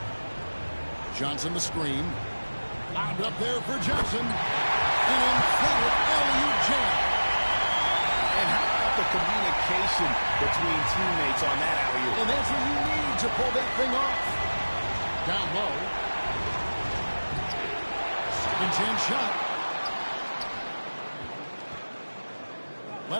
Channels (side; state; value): both; inverted; correlation -1.00